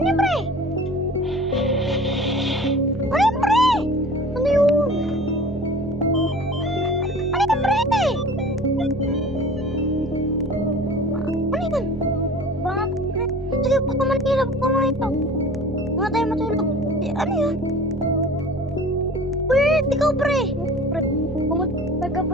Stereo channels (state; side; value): normal; both; correlation 0.42